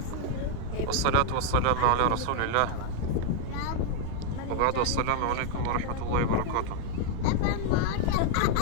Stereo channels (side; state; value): both; different; correlation 0.00